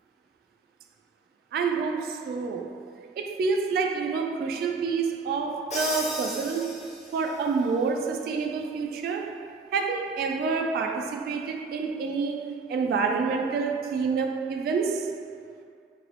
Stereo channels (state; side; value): quieter; left; 4.4 dB